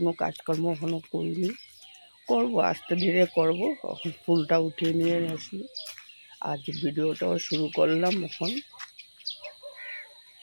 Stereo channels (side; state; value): both; inverted; correlation -1.00